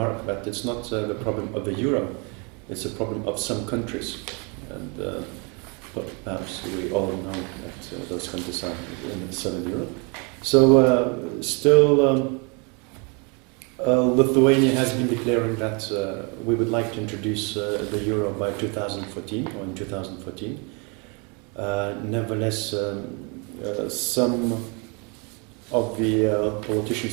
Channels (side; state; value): left; quieter; 32.9 dB